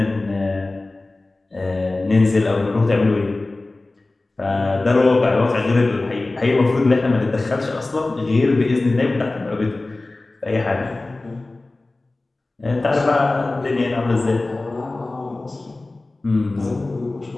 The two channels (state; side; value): quieter; right; 3.1 dB